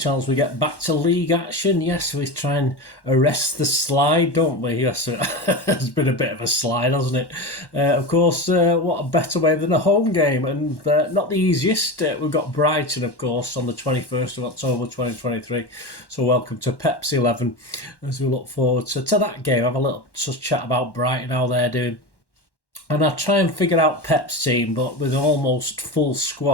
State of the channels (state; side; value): late; right; 1.1 ms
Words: We get back to league action. Yes, we try and arrest the slide, don't we? Yes, it's been a bit of a slide, hasn't it? Of course, what a better way than a home game, and not the easiest. We've got Brighton, of course, on the 21st of October 2023. So welcome to PEP'S 11 as we look forward to that game. Have a little chat about Brighton, how they're doing. And I'll try and figure out Pep's team, but with an almost full